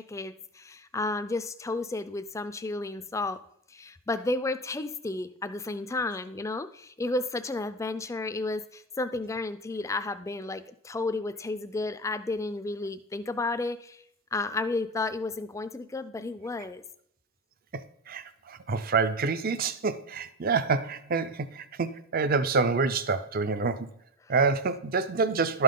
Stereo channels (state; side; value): normal; both; correlation 0.20